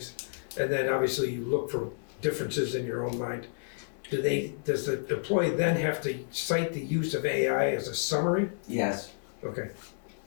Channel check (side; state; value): right; silent; 58 dB below the other